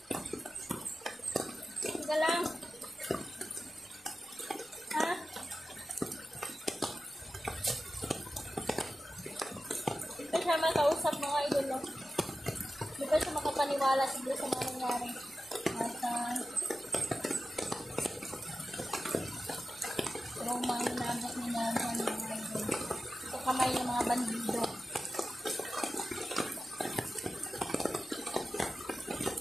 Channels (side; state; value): both; normal; correlation 0.93